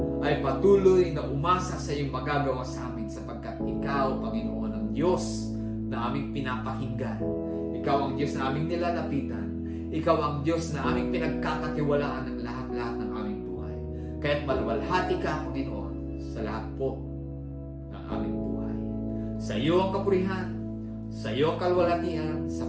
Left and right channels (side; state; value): both; identical; correlation 1.00